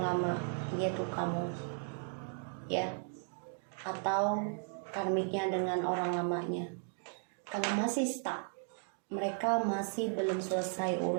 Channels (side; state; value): left; silent; 54 dB below the other